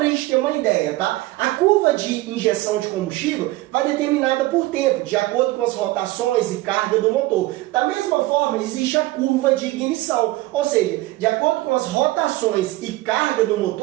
a gente ter uma ideia, tá? A curva de injeção de combustível vai determinada por tempo, de acordo com as rotações e carga do motor. Da mesma forma, existe a curva de ignição, ou seja, de acordo com as rotações e carga do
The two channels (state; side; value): quieter; left; 18.6 dB